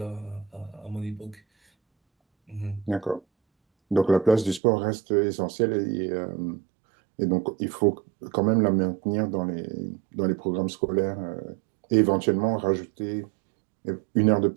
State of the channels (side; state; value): left; drops out; at 4.6 s